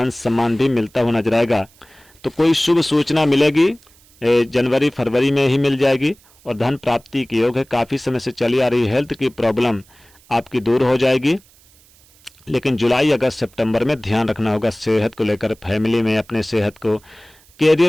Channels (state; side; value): noise; right; hiss, 29 dB below the sound